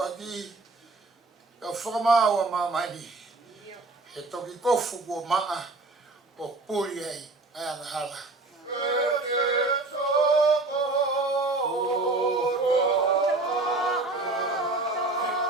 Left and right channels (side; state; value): left; quieter; 3.2 dB